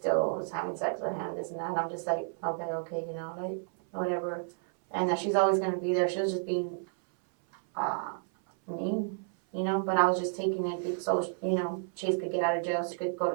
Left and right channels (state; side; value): silent; left; 57 dB below the other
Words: was having sex with him, this and that, and I'm just like, okay, whatever. And that she's always going to be there. She was just being mean, but I was just taking it so, Chase could get out of jail, so she could